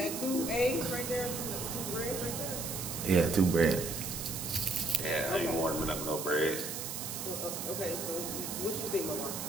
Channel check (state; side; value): noise; right; hiss, 5 dB below the sound